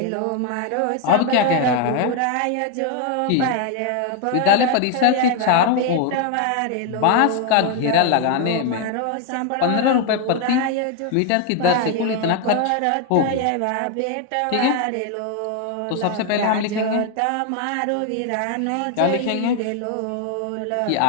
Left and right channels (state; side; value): different; both; correlation 0.01